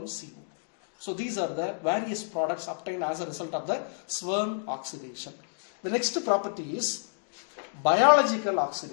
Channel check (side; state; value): right; silent; digital silence